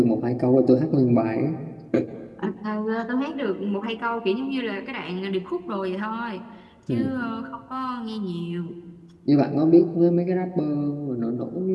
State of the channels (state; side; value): identical; both; correlation 1.00